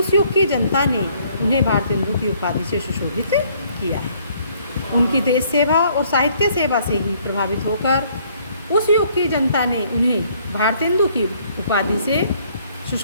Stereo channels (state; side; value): inverted; both; correlation -0.63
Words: युग की जनता ने उन्हें भारतेंदु की उपाधि से सुशोभित किया है। उनकी देश सेवा और साहित्य सेवा से ही प्रभावित होकर उस युग की जनता ने उन्हें भारतेंदु की उपाधि से